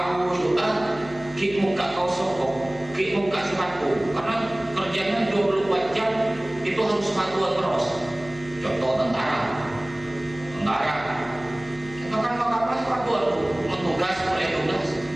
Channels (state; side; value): noise; left; hum, 18 dB below the sound